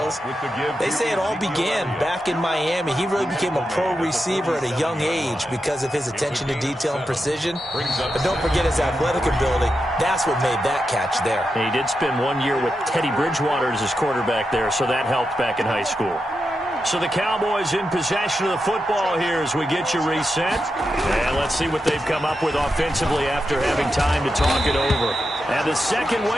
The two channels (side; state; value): both; normal; correlation 0.88